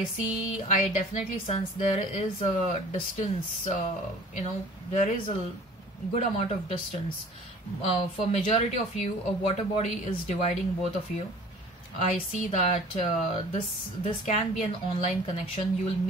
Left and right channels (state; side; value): normal; both; correlation 0.47